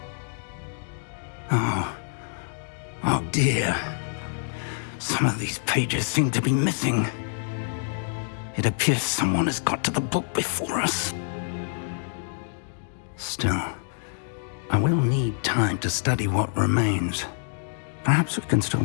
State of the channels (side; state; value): right; silent; digital silence